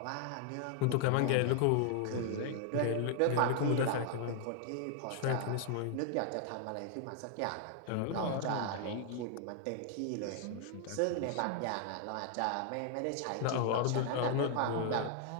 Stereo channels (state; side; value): different; both; correlation 0.00